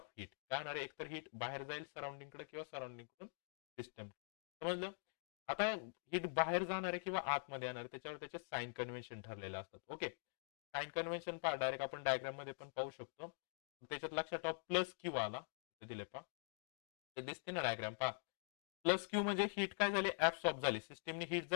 हीट. काय होणार आहे, एकतर हीट बाहेर जाईल सराउंडिंगकडे किंवा सराउंडिंग कडून सिस्टम. समजलं. आता हीट बाहेर जाणार आहे किंवा आतमध्ये येणार आहे, त्याच्यावर त्याचे साइन कन्व्हेन्शन ठरलेले असतात. ओके, साइन कन्व्हेन्शन पहा, डायरेक्ट आपण डायग्राम मध्ये पण पाहू शकतो. त्याच्यात लक्षात ठेवा, प्लस क्यू आला दिले पहा, ते दिसते ना डायग्राम पहा. प्लस क्यू म्हणजे हीट काय झाली, ऍब्सॉर्ब झाली. सिस्टीमने हीट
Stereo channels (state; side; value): silent; right; digital silence